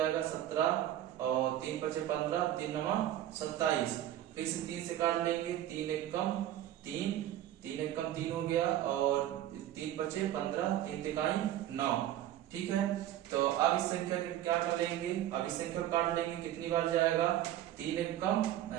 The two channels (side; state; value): left; quieter; 12.6 dB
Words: 17, और 3 पचे 15, 3 नमा 27। फिर से 3 से काट लेंगे, 3 एकम 3, 3 एकम 3 हो गया, और 3 पचे 15, 3 तिहाई 9। ठीक है, तो अब इस संख्या के क्या कर लेंगे, अब इस संख्या को काट लेंगे, कितनी बार जाएगा 3 एकम